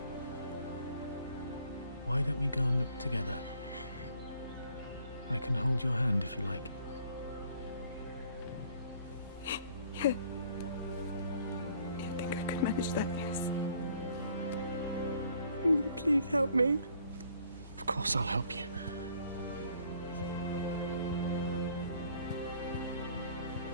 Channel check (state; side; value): inverted; both; correlation -0.60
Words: Why don't we go and look together? I can hold your hand if you like. Yeah. You think I could manage that, yes? Will you please help me? Of course I'll help you.